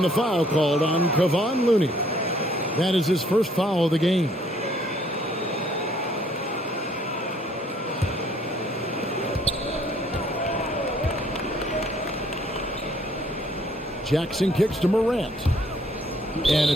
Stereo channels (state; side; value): normal; both; correlation 0.62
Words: the foul called on Kevon Looney. That is his first foul of the game. Jackson kicks to Morant. And